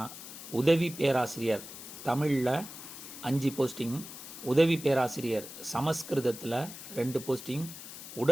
உதவி பேராசிரியர் தமிழில் 5 போஸ்டிங், உதவி பேராசிரியர் சமஸ்கிருதத்தில் 2 போஸ்டிங்,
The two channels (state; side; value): noise; left; hiss, 12 dB below the sound